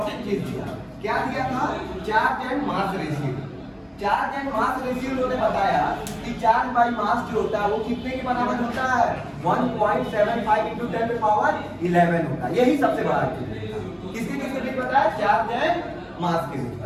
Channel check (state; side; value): identical; both; correlation 1.00